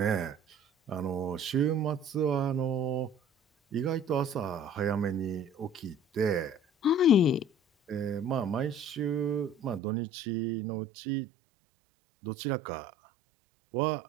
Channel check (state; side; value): drops out; left; at 9.8 s